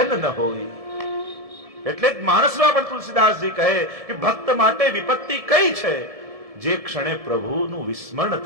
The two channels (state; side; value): late; left; 1.7 ms